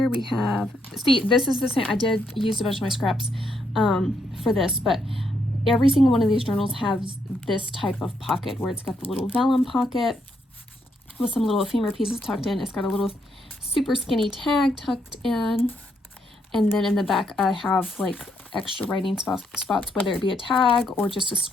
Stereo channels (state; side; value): normal; both; correlation 0.76